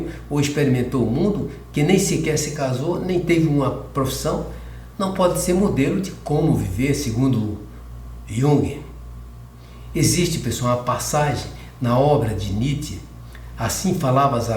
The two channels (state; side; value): identical; both; correlation 1.00